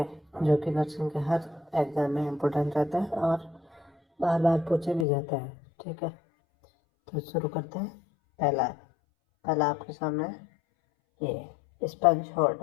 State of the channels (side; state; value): right; drops out; at 5.1 s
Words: जो कि नर्सिंग के हर एग्जाम में इम्पोर्टेंट रहता है और बार बार पूछे भी जाते हैं। ठीक है, तो शुरू करते हैं। पहला पहला आपके सामने ये sponge